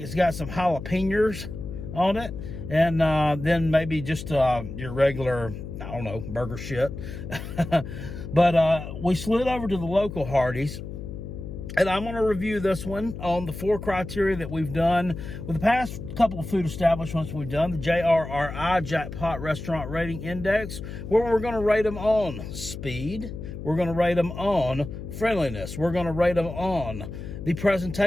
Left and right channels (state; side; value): noise; left; hum, 9 dB below the sound